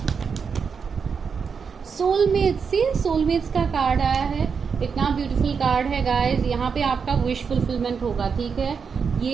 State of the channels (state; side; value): quieter; left; 6.0 dB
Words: सोलमेट्स का कार्ड आया है, इतना ब्यूटीफुल कार्ड है गाइस। यहाँ पे आपका विश फुलफिलमेंट होगा, ठीक है।